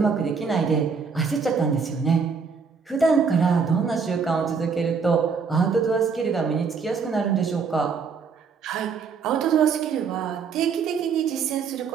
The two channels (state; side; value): quieter; left; 5.5 dB